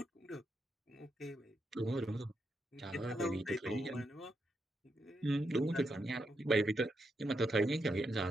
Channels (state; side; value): normal; both; correlation 0.82